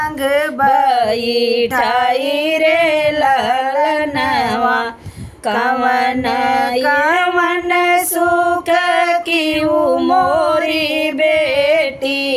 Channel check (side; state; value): both; identical; correlation 1.00